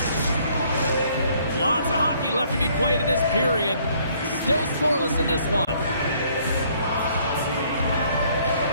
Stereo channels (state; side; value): inverted; both; correlation -0.63